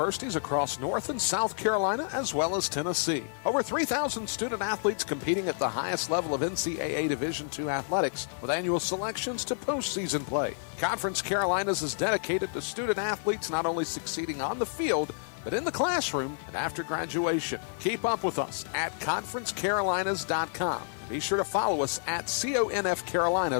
across North and South Carolina, as well as Tennessee. Over 3,000 student athletes competing at the highest level of NCAA Division II athletics, with annual selections to postseason play. Conference Carolinas is dedicated to student athletes not only succeeding on the field, but in the classroom and after graduation. Keep up with us at conferencecarolinas.com. Be sure to follow us at CONF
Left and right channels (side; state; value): right; silent; digital silence